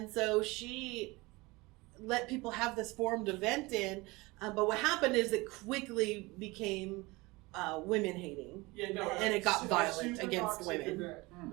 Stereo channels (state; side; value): quieter; left; 23.2 dB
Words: so she let people have this forum to vent in, but what happened is it quickly became women hating. Yeah, no, And it got it's violent super against toxic women. event.